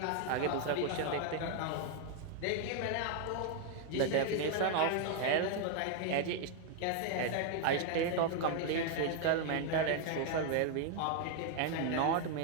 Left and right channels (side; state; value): both; different; correlation 0.00